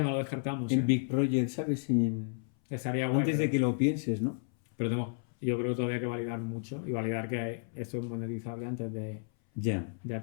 no lo descartamos. Big Project, ¿sabes? Estaría guay, Antes de pero- que lo pienses, ¿no? Pero yo creo que todavía hay que validar mucho y validar que esto es monetizable antes Ya. de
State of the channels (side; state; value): right; silent; 56 dB below the other